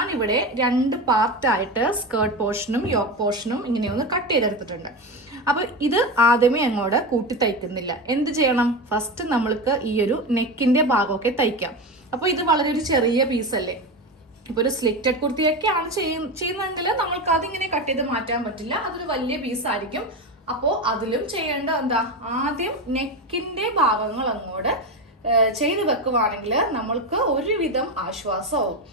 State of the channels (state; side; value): normal; both; correlation 0.20